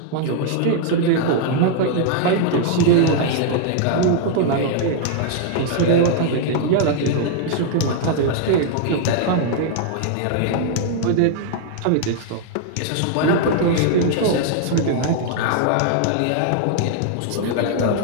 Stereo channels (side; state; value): both; different; correlation -0.01